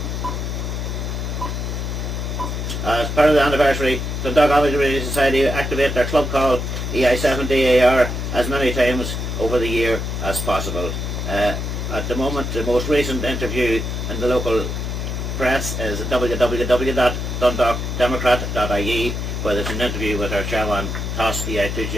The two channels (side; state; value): left; noise; hum, 3 dB below the sound